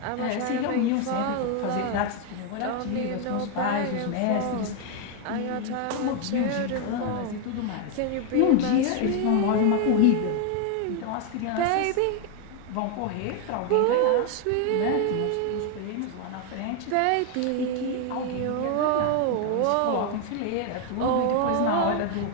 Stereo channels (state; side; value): different; both; correlation 0.01